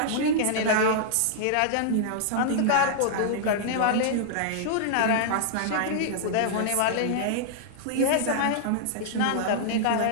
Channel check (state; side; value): different; both; correlation -0.01